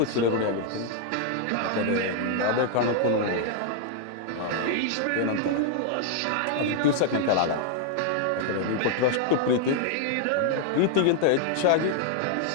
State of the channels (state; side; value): different; both; correlation 0.00